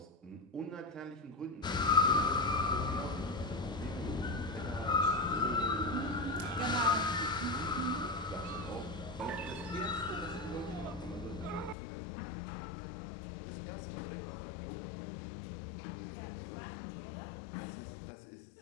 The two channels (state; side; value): drops out; right; at 11.8 s